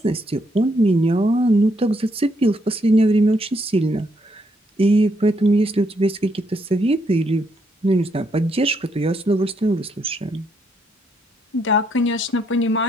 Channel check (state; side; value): normal; both; correlation 0.74